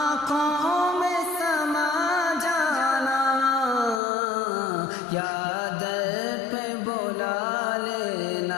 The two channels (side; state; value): right; drops out; at 4.0 s